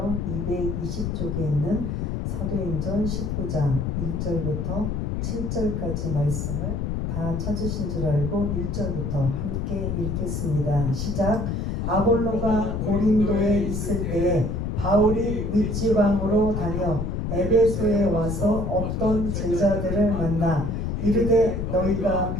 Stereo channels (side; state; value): left; noise; rumble, 2 dB below the sound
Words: 220쪽에 있는 사도행전 19장 1절부터 7절까지 말씀을 다 찾으신 줄 알고 1절부터 함께 읽겠습니다. 시작. 아볼로가 고린도에 있을 때에 바울이 윗지방으로 다녀 에베소에 와서 어떤 제자들을 만나 이르되 너희가